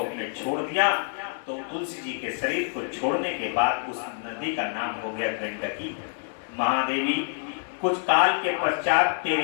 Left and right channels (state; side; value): silent; right; 60 dB below the other